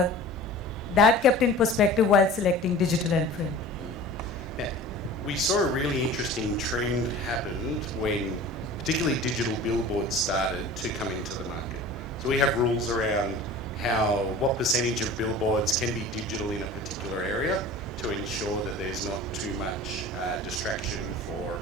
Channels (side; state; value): both; normal; correlation 0.40